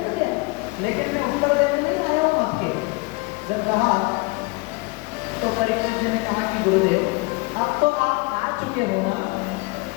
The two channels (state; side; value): quieter; right; 26.3 dB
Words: चुके हो ना